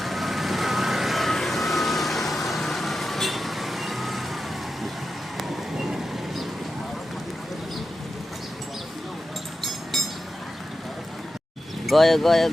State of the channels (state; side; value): normal; both; correlation 0.91